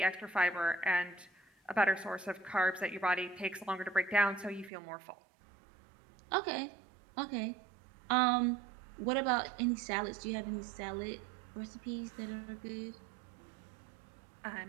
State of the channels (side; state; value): left; drops out; at 4.7 s